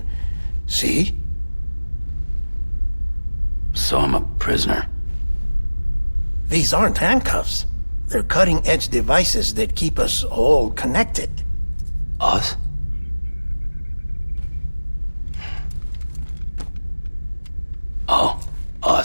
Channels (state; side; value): inverted; both; correlation -1.00